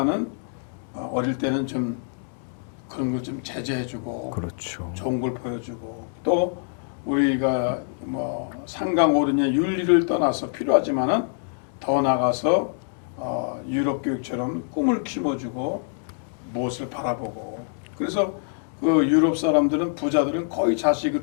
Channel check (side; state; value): right; silent; digital silence